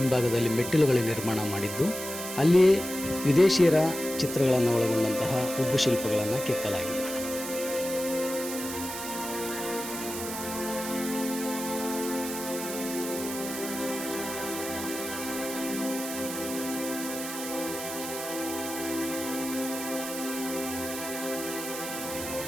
ಮೆಟ್ಟಿಲುಗಳ ನಿರ್ಮಾಣ ಮಾಡಿದ್ದು, ಅಲ್ಲಿಯೇ ವಿದೇಶಿಯರ ಚಿತ್ರಗಳನ್ನು ಒಳಗೊಂಡಂತಹ ಉಬ್ಬು ಶಿಲ್ಪಗಳನ್ನು ಕೆತ್ತಲಾಗಿದೆ.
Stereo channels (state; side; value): noise; right; hiss, 7 dB below the sound